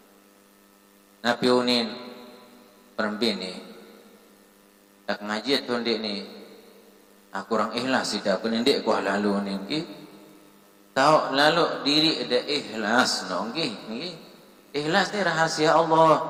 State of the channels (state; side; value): identical; both; correlation 1.00